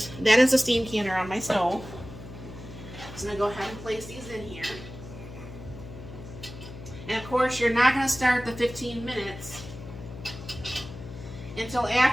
that is a steam canner on my stove. So I'm going to go ahead and place these in here. And of course, you're not going to start the 15 minutes until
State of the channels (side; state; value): left; noise; hum, 13 dB below the sound